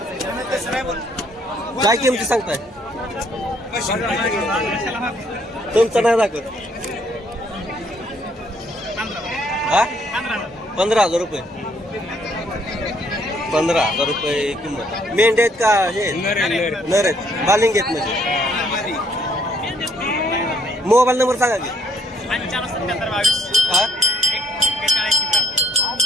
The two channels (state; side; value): normal; both; correlation 0.67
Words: काय किमती सांगताय? तुमचं नाही दाखवत. हा 15,000 रुपये. 15,000 रुपये किंमत. मेंढ्या आहेत का हे नर आहेत? बालिंग आहेत म्हणजे. मोबाईल नंबर सांगा की. हा